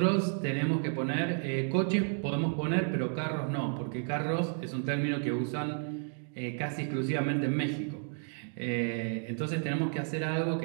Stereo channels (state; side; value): silent; left; 57 dB below the other